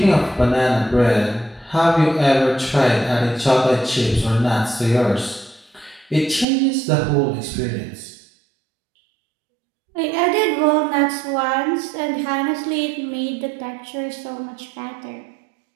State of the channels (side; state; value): left; drops out; at 6.5 s